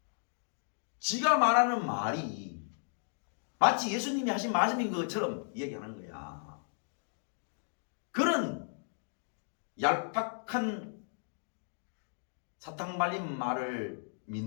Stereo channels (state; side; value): silent; right; digital silence